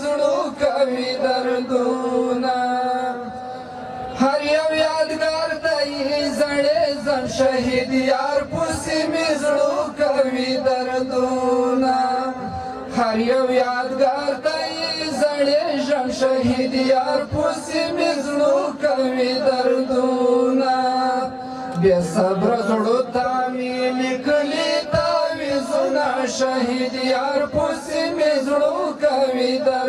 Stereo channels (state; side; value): identical; both; correlation 1.00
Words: زړو کوي دردونه هر یو یادګار دی زړې زن شهید یار پسې مې زړو کوي دردونه هر یو یادګار دی زړې ژوند شهید یار پسې مې زړو کوي دردونه بې صبره زړو ته مې لیکلي تعویضونه شهید یار پسې مې زړو کوي